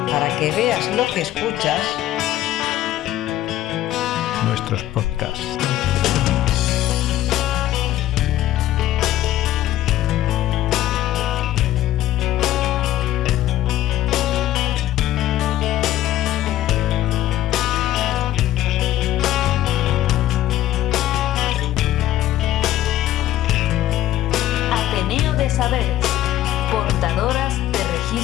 Para que veas lo que escuchas. Nuestros podcasts. Ateneo de Saberes, portadoras de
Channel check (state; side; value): quieter; right; 13.8 dB